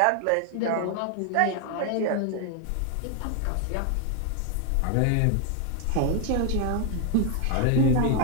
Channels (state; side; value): different; both; correlation 0.00